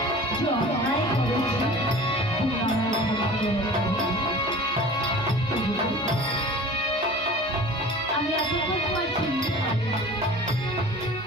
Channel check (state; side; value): normal; both; correlation 0.41